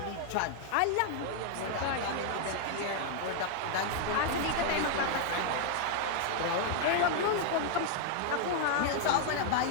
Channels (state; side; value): different; both; correlation 0.00